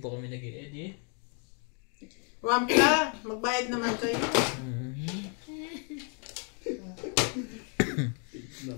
kami nag-edit. Wampla, magbayad naman kayo.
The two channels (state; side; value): quieter; right; 39.7 dB